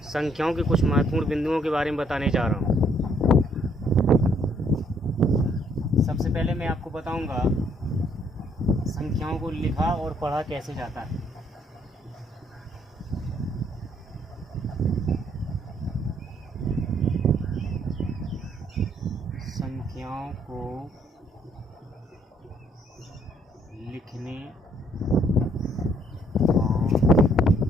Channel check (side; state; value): both; normal; correlation 0.67